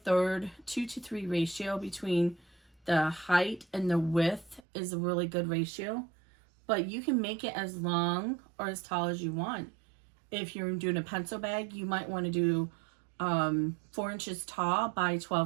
3 ratio between the height and the width is a really good ratio, but you can make it as long or as tall as you want. If you're doing a pencil bag, you might want to do 4 inches tall by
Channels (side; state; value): left; drops out; at 4.6 s